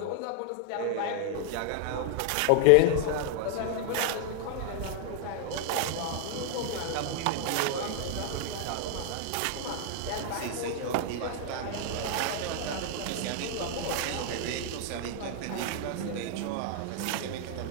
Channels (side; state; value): both; different; correlation 0.00